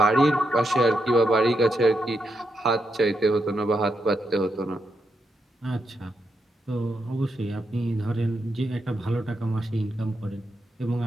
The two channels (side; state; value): both; normal; correlation 0.83